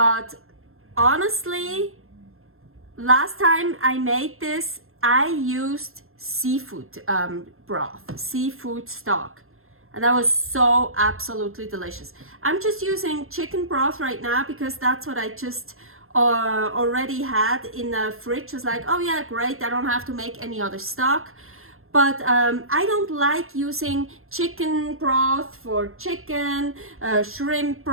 honestly, last time I made this, I used seafood broth, seafood stock, and that was so absolutely delicious. I'm just using chicken broth right now because that's what I just already had in the fridge. I was like, oh yeah, great, I don't have to make any other stock. But I don't like using chicken broth for chicken, shrimp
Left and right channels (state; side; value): late; left; 0.61 ms